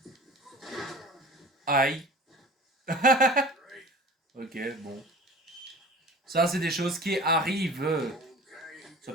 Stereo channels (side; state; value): both; normal; correlation 0.40